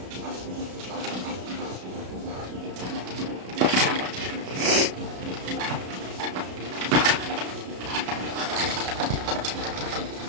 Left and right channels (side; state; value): left; late; 33 ms